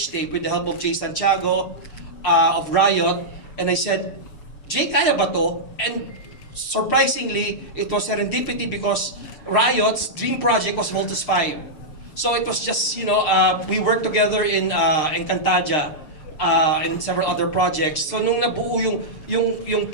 tape with the help of Jay Santiago of Riot, and I said, Jay, kaya ba to? And surprisingly, it was serendipity because Riot's dream project was Voltus 5. So it was just, we worked together in Encantadia. And several other projects. So nung nabuo yung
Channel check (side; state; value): right; late; 6.7 ms